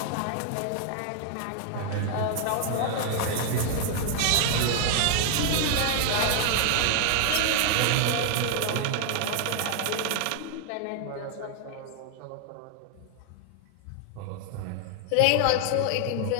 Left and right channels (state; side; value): different; both; correlation 0.00